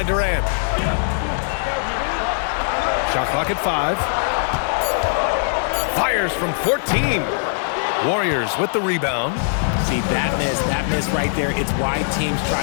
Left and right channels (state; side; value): silent; right; digital silence